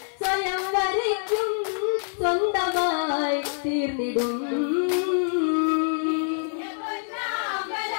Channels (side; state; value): right; silent; 61 dB below the other